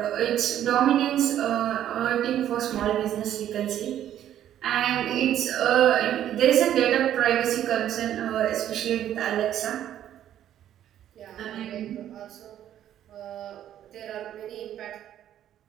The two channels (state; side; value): quieter; left; 11.2 dB